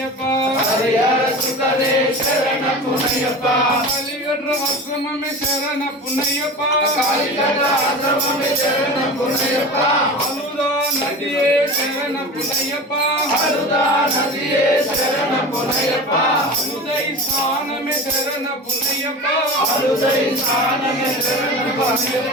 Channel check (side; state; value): both; normal; correlation 0.32